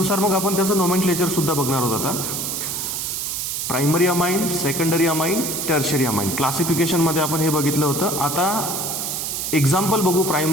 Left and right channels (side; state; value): right; noise; hiss, 3 dB below the sound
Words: मग आपण त्याचं नोमेनक्लेचर सुद्धा बघणार आहोत आता. Primary amine, secondary amine, tertiary amine क्लासिफिकेशनमध्ये आपण हे बघितलं होतं. आता एक्झाम्पल बघू